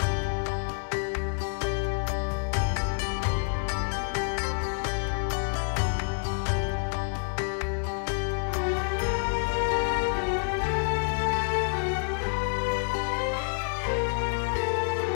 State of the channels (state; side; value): silent; right; digital silence